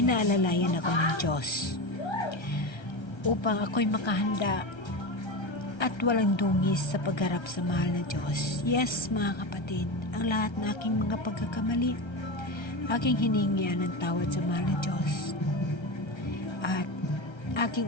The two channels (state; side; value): late; right; 1.3 ms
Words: ako ng Diyos upang ako'y makahanda at walang dungis sa pagharap sa mahal na Diyos. Yes, mga kapatid, ang lahat ng aking mga pagkakamali, aking hiningian ng tawad sa mahal na Diyos. At